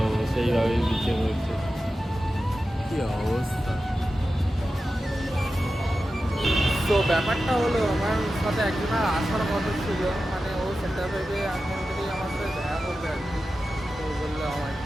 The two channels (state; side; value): normal; both; correlation 0.92